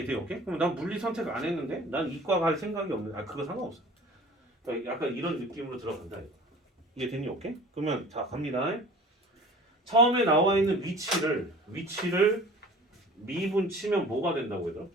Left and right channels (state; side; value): normal; both; correlation 0.44